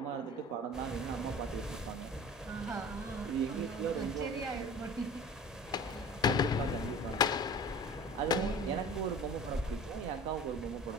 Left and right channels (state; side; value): normal; both; correlation 0.40